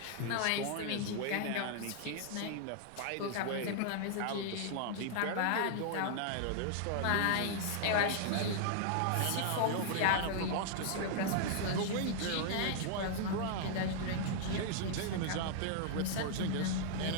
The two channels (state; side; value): different; both; correlation -0.01